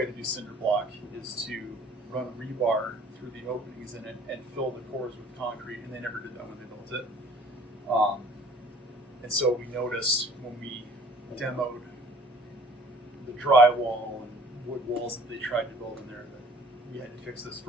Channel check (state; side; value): normal; both; correlation 0.52